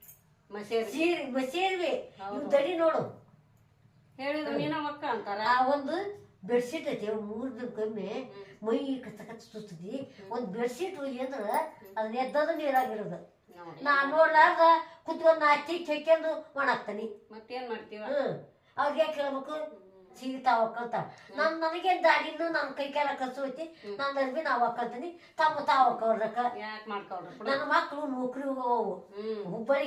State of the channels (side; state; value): both; identical; correlation 1.00